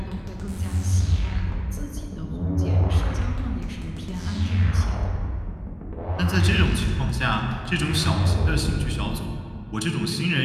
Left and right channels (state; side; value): identical; both; correlation 1.00